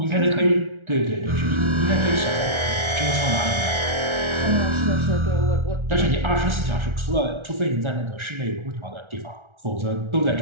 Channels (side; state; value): left; late; 1.4 ms